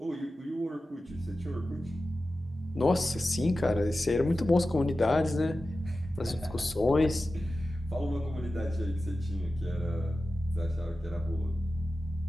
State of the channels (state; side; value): normal; both; correlation 0.94